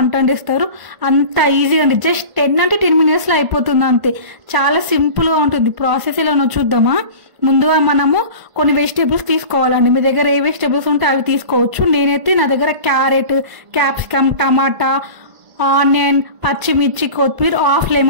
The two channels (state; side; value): late; left; 1.5 ms